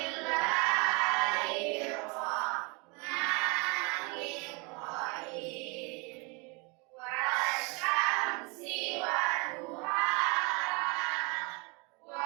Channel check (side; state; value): left; quieter; 30.4 dB